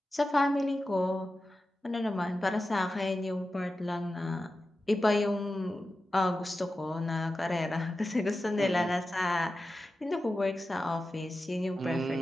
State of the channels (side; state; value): both; normal; correlation 0.93